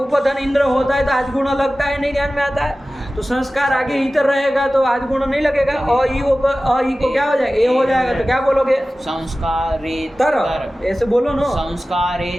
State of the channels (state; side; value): normal; both; correlation 0.96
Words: इंद्र होता है तो आज गुण लगता है, नहीं ध्यान में आता है। तो संस्कार आगे इतर रहेगा तो आज गुण नहीं लगेगा। अ ई को क्या हो जाएगा? ए हो जाएगा। तो क्या बोलोगे? संस्कारेतर, ऐसे बोलो ना।